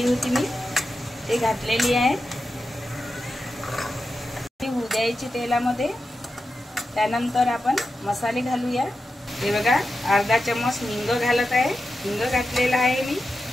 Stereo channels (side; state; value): both; normal; correlation 0.90